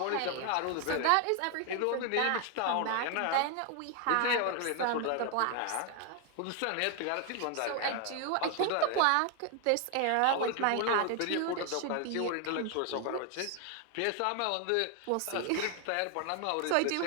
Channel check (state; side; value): different; both; correlation 0.01